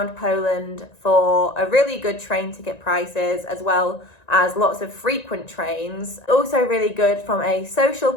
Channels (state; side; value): late; right; 1.9 ms